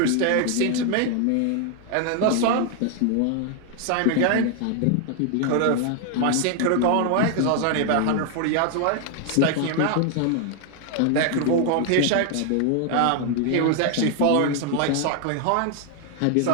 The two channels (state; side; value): different; both; correlation 0.00